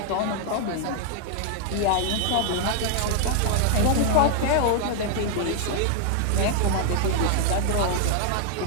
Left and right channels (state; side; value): different; both; correlation 0.00